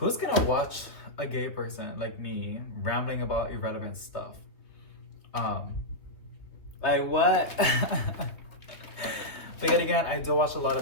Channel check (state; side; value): late; right; 3.0 ms